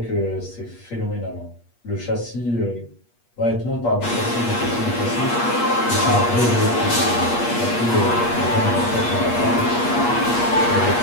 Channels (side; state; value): right; late; 8.4 ms